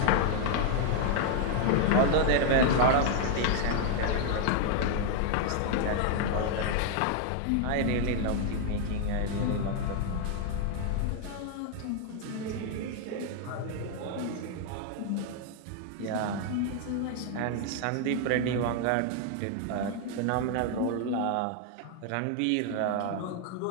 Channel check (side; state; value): both; different; correlation 0.00